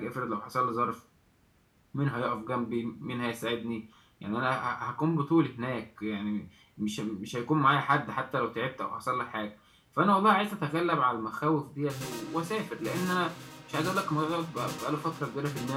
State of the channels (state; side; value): identical; both; correlation 1.00